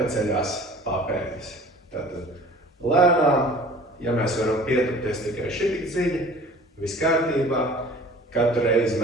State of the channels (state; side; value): normal; both; correlation 0.46